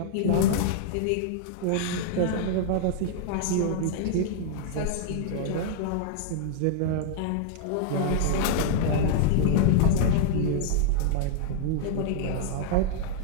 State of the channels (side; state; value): both; different; correlation -0.01